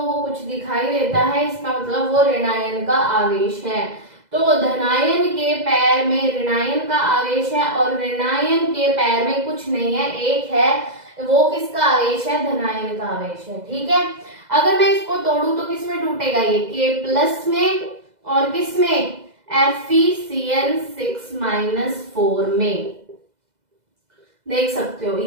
को कुछ दिखाई देता है, इसका मतलब वो ऋणायन का आवेश है। तो धनायन के पैर में ऋणायन का आवेश है और ऋणायन के पैर में कुछ नहीं है, एक है, वो किसका आवेश है, धनायन का आवेश है। ठीक है। अगर मैं इसको तोड़ूं तो किसमें टूटेगा, ये K+ में, और किसमें, FeCN6-4 में। देख सकते हो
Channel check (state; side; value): late; left; 2.0 ms